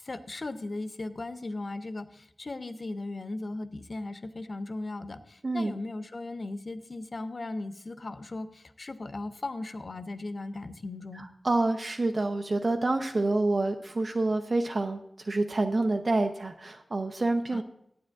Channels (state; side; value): normal; both; correlation 0.97